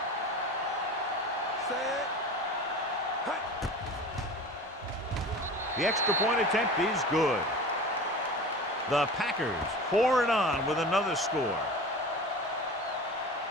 The extra point attempt is good. The Packers pour it on with another score.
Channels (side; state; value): both; normal; correlation 0.35